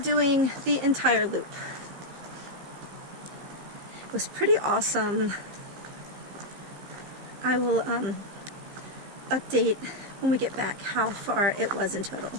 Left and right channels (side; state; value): left; late; 15 ms